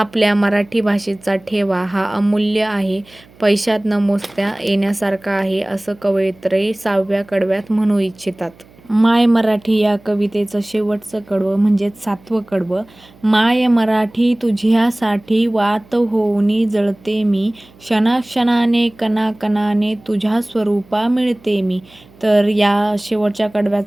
मराठी भाषेचा ठेवा हा अमूल्य आहे, पैशात न मोजता येण्यासारखा आहे, असं कवयित्री 6व्या कडव्यात म्हणू इच्छितात. माय मराठी या कवितेचं शेवटचं कडवं म्हणजेच 7वं कडवं. माय मराठी तुझ्यासाठी वात होऊनी जळते मी, क्षणाक्षणाने कणाकणाने तुझ्या स्वरूपा मिळते मी. तर या शेवटच्या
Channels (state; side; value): noise; right; hum, 27 dB below the sound